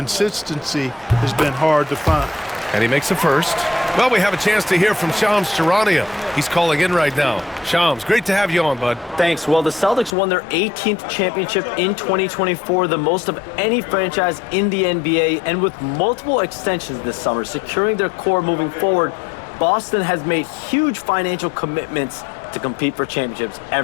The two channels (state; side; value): drops out; right; at 10.2 s